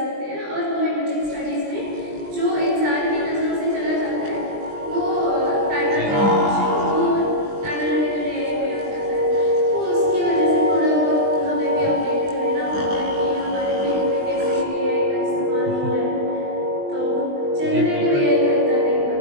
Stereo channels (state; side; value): late; left; 20 ms